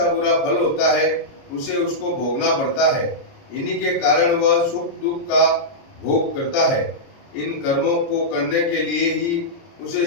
बुरा फल होता है उसे उसको भोगना पड़ता है। इन्हीं के कारण वह सुख दुख का भोग करता है। इन कर्मों को करने के लिए ही उसे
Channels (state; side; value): late; right; 29 ms